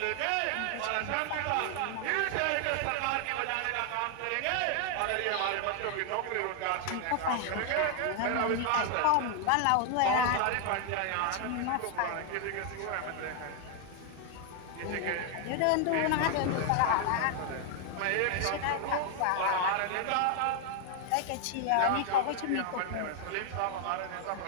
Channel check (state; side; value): different; both; correlation 0.00